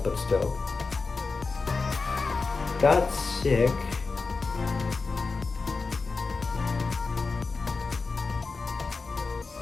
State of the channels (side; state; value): right; quieter; 4.2 dB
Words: but still. Got sick.